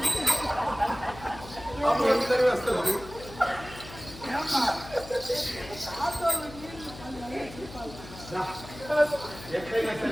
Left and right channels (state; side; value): noise; left; hum, 15 dB below the sound